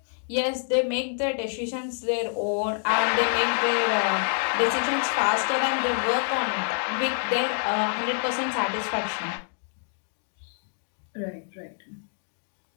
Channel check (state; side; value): silent; right; digital silence